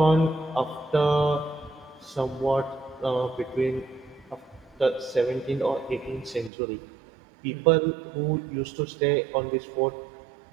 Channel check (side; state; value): left; drops out; at 6.5 s